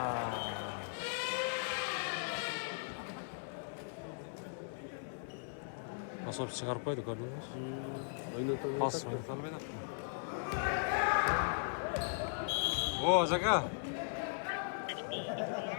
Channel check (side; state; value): right; silent; 52 dB below the other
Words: Nasıl bir çıkarıp koyduk gördünüz? Pas oynatalım ben attım. Oo Jaka.